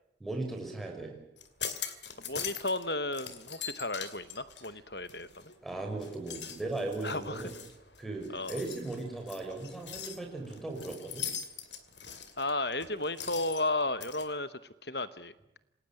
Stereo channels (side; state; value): both; normal; correlation -0.07